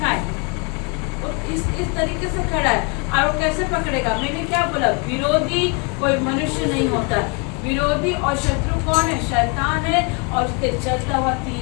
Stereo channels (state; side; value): quieter; right; 32.7 dB